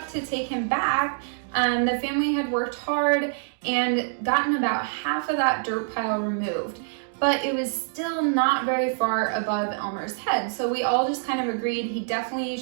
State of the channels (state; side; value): silent; left; digital silence